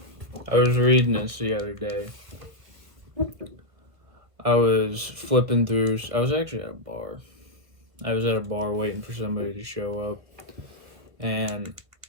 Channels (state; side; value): late; left; 1.7 ms